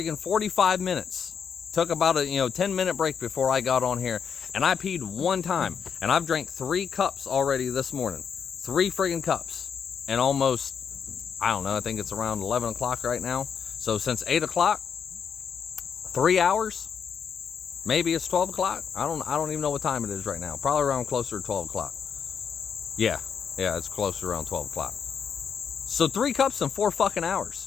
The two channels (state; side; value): quieter; right; 7.0 dB